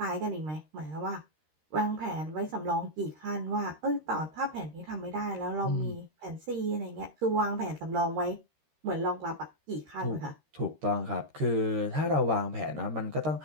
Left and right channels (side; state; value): left; late; 13 ms